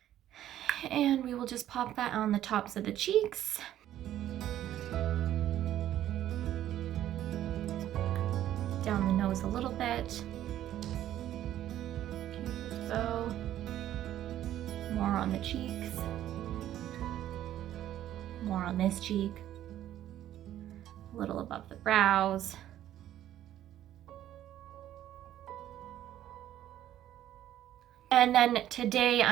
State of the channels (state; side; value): quieter; left; 12.3 dB